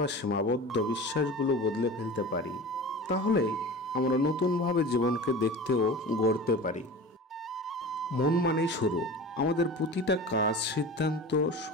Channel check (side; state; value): both; normal; correlation 0.34